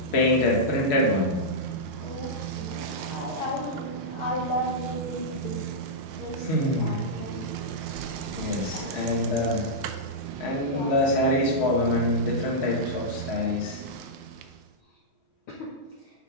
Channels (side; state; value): both; normal; correlation -0.10